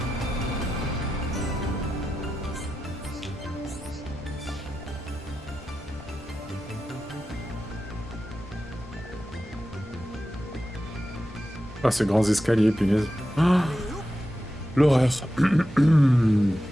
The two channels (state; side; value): normal; both; correlation 0.91